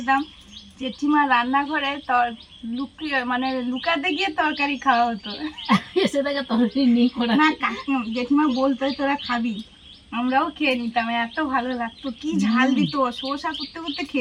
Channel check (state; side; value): identical; both; correlation 1.00